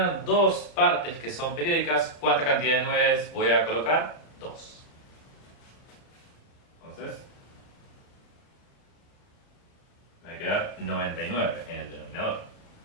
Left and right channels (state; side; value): late; right; 34 ms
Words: dos partes que son periódicas, ¿cuánta cantidad de 9 voy a colocar? 2. Entonces, me va a quedar 99 en el denominador.